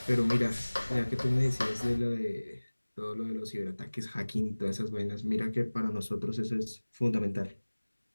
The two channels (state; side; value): inverted; both; correlation -1.00